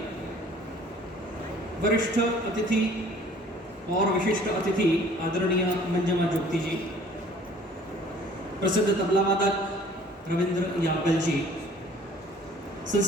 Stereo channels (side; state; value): both; normal; correlation 0.53